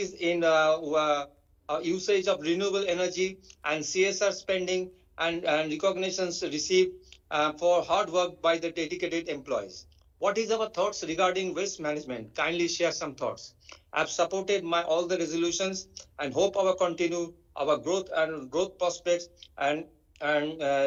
in usage of renewable energy and CSR spending and recognitions received for hard work by the dedicated employees. What is our thoughts regarding waste management? Kindly share some thoughts. I've supported all the resolutions and hope our growth prospects and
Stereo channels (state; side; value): identical; both; correlation 1.00